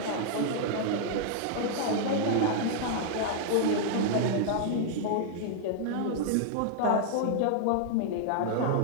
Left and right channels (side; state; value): both; different; correlation -0.01